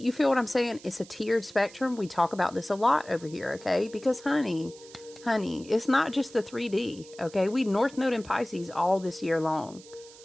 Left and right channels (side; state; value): right; noise; hiss, 21 dB below the sound